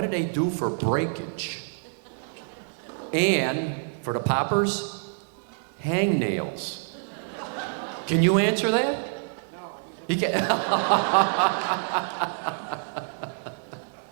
do they do for breakage? And for the poppers, hangnails. Can you answer that? No. He can.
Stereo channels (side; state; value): left; silent; digital silence